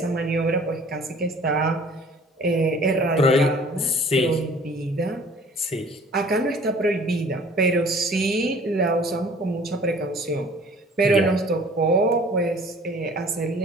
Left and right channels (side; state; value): both; normal; correlation 0.50